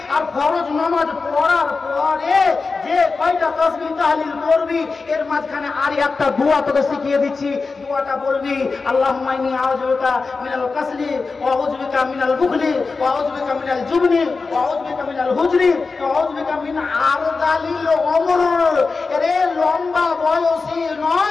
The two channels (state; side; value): quieter; right; 4.3 dB